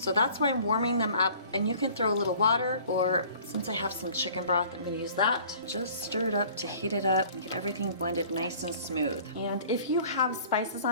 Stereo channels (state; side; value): inverted; both; correlation -0.50